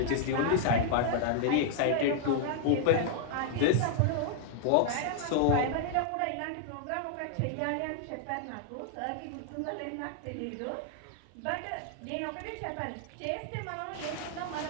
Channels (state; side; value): different; both; correlation -0.01